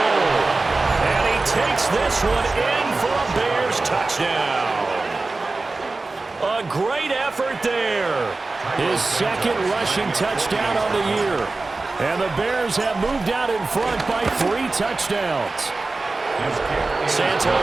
And he takes this one in for a Bears touchdown. A great effort there. His second rushing touchdown on the year. And the Bears have moved out in front by 3 touchdowns.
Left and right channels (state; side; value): quieter; left; 3.5 dB